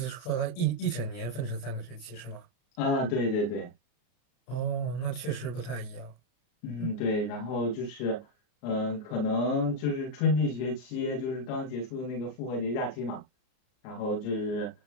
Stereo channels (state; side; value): late; right; 33 ms